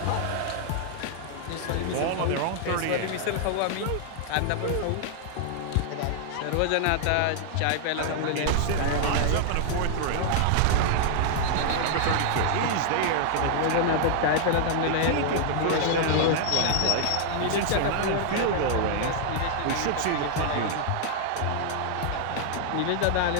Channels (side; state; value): both; different; correlation 0.00